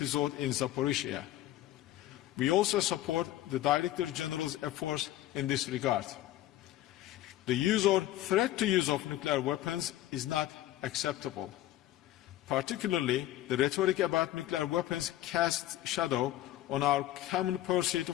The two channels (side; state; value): right; quieter; 14.3 dB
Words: in Zaporizhzhia. We also support the Director General's efforts in this regard. The use or threat to use of nuclear weapons is not acceptable. Particularly, the rhetoric about nuclear weapons casts shadow on our common pursuit